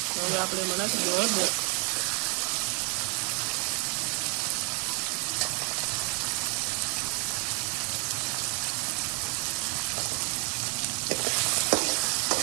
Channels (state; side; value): quieter; left; 35.2 dB